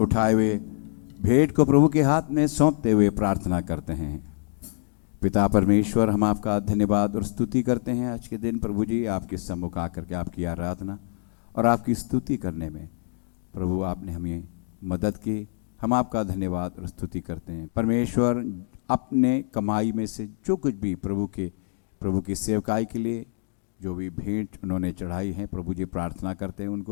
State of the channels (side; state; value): right; silent; digital silence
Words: हुए भेंट को प्रभु के हाथ में सौंपते हुए प्रार्थना करते हैं। पिता परमेश्वर, हम आपका धन्यवाद और स्तुति करते हैं आज के दिन प्रभु जी, आपके सम्मुख आकर के आपकी आराधना और आपकी स्तुति करने में प्रभु आपने हमें मदद की। हम आपका धन्यवाद और स्तुति करते हैं परमेश्वर। अपने कमाई में से जो कुछ भी प्रभु की सेवकाई के लिए जो भी भेंट उन्होंने चढ़ाई है प्रभु जी प्रार्थना करते हैं